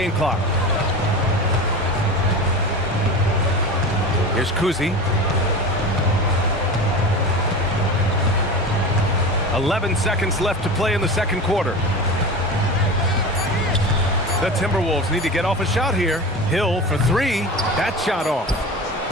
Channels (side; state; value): both; normal; correlation 0.29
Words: clock. Here's Cousy. 11 seconds left to play in the second quarter. The Timberwolves need to get off a shot here. Hill for 3. That shot off.